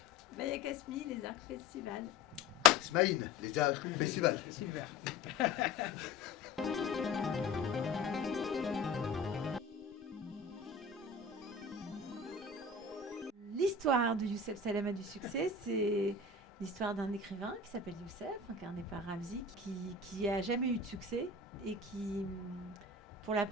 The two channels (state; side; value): quieter; right; 3.6 dB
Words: Maya Kasmi, les Arcs Festival. Smaïn, les Arcs Festival. Super. L'histoire de Youssef Salama du succès, c'est l'histoire d'un écrivain qui s'appelle Youssef, incarné par Ramzi, qui a jamais eu de succès et qui, pour la